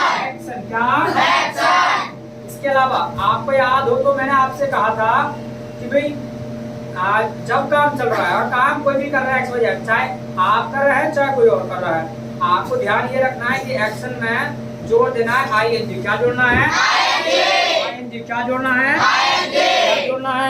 एक्शन क्या? इसके अलावा आपको याद हो तो मैंने आपसे कहा था कि भाई जब काम चल रहा है और काम कोई भी कर रहा है एक्स चाहे आप कर रहे हैं चाहे कोई और कर रहा है, आपको ध्यान ये रखना है कि एक्शन में जोड़ देना है आईएनजी। क्या जोड़ना है? आईएनजी। क्या जोड़ना है? क्या जोड़ना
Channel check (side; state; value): both; identical; correlation 1.00